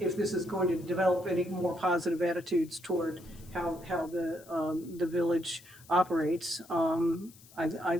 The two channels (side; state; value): left; noise; hiss, 23 dB below the sound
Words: this is going to develop any more positive attitudes toward how the village operates.